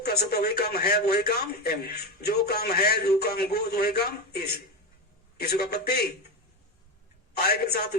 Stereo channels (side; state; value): both; normal; correlation 0.16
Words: सकता वही काम है, वही काम एम। जो काम है, जो काम गो, वही काम इस। किसी का पत्ती। आई के साथ